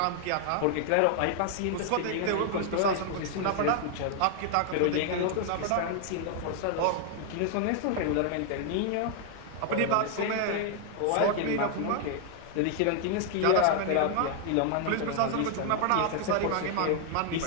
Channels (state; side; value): different; both; correlation 0.00